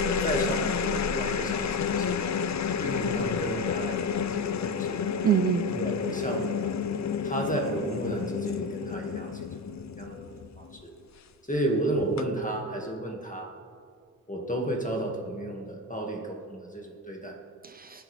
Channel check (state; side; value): normal; both; correlation 0.19